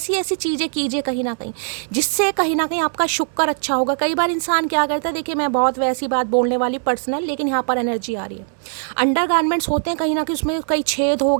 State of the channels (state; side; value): silent; left; 57 dB below the other